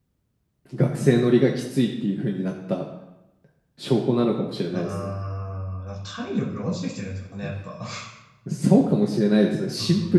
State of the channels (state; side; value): identical; both; correlation 1.00